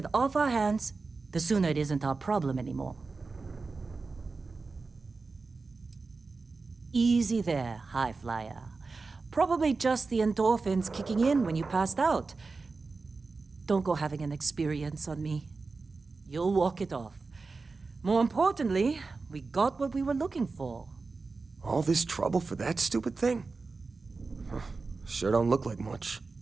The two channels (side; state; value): left; quieter; 4.1 dB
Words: off our hands, the sooner it isn't our problem anymore. Easy there, high flyer. Probably just the endorphins kicking in when you passed out. Don't go having an experience on me. You'll walk it off. More importantly, we got what we were looking for. All this trouble for that stupid thing? Huh, sure don't look like much.